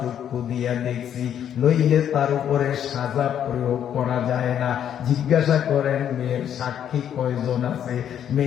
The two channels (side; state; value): right; quieter; 9.6 dB